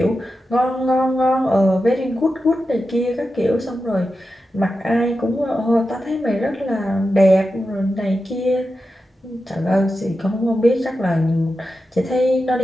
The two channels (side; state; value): both; normal; correlation 0.91